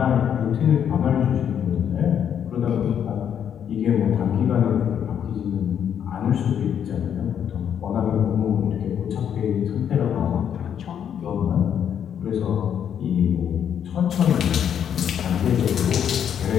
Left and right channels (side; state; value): right; quieter; 8.8 dB